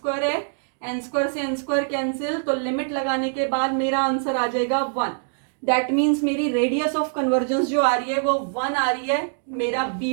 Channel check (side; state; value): left; silent; digital silence